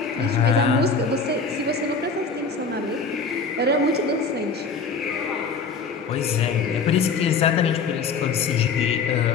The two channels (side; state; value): right; quieter; 4.8 dB